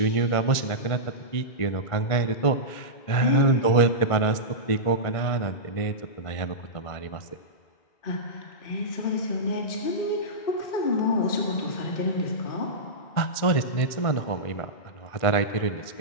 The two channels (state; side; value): late; right; 1.5 ms